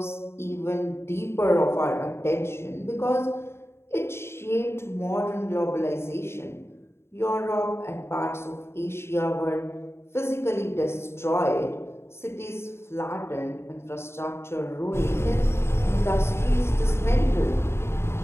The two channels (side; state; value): right; late; 0.12 ms